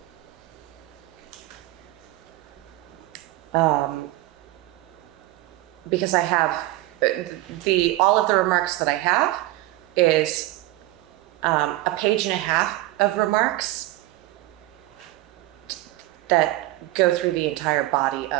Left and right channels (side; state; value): left; quieter; 17.6 dB